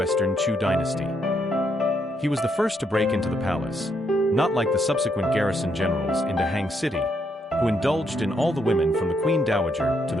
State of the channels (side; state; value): both; normal; correlation 0.76